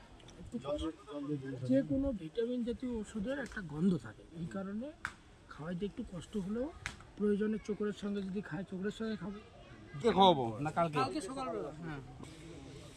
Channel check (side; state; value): both; identical; correlation 1.00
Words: যে কোনো ভিটামিন জাতীয় ওষুধের একটা গন্ধ থাকে, এই কারণে খাওয়াইতে একটু কষ্ট হলেও প্রয়োজনে চোখের সঙ্গে যদি খায় চোখের সঙ্গে খাবো। কে খাওয়াবো না কালকে? কালকে সকালবেলা। হ্যাঁ